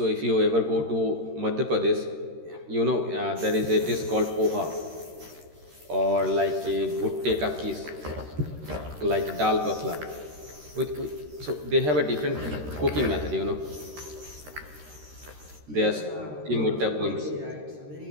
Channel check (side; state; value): left; late; 13 ms